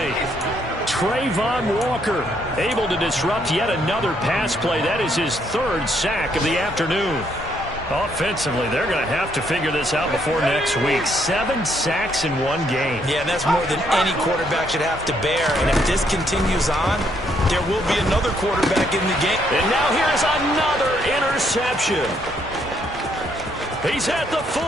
Trayvon Walker able to disrupt yet another pass play. That is his 3rd sack of the afternoon. Offensively, they're going to have to figure this out before next week. 7 sacks in one game. Yeah, and that's more than any quarterback should have to bear. And if this continues on, there will be another quarterback in the game. And now here's another interception. He's at the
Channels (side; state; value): both; normal; correlation 0.72